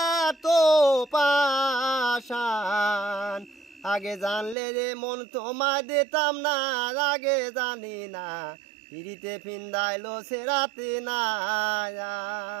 তো পাষাণ। আগে জানলে যে মন তোমায় দিতাম না, আগে জানি না পিরিতে ফিন্দাইলো সেরাতে না।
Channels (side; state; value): left; drops out; at 4.5 s